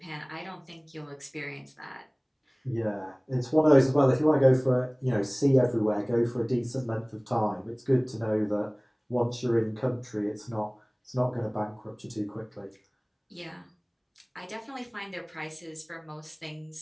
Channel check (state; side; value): identical; both; correlation 1.00